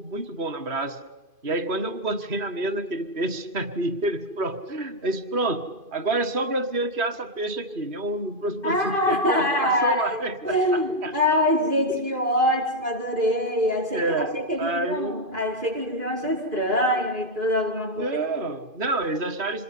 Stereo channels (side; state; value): left; late; 2.5 ms